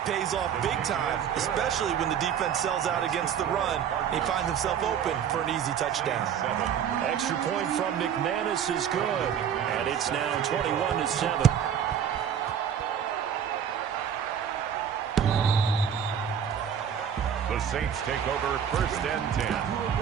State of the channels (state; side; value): quieter; left; 8.5 dB